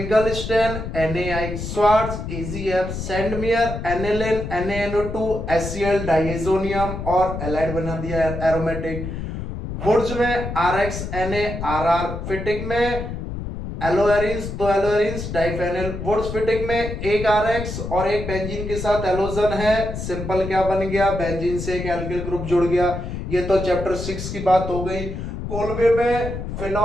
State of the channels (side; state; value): left; noise; rumble, 6 dB below the sound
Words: NaI, Swarts AgF, Sandmeyer aniline NaNO2 HCl diazonium और एलाइड बना दिया एरोमेटिक। वुर्ज में RX Na RR, फिटिक में एलोएरिन्स, दो एलोएरिन्स डाइफेनिल। वुर्ज फिटिक में एक RX और एक बेंजीन के साथ एलोजन है, सिंपल क्या बन गया, बेंजीन से एक एल्किल ग्रुप जुड़ गया। ये तो चैप्टर 6 की बात हो गई। कोलबे में